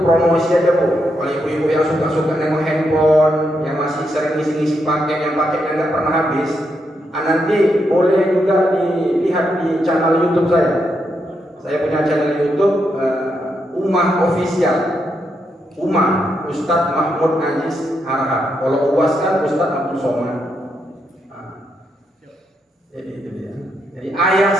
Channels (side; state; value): both; normal; correlation 0.81